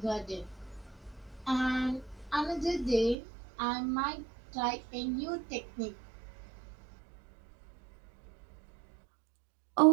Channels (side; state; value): left; drops out; at 3.2 s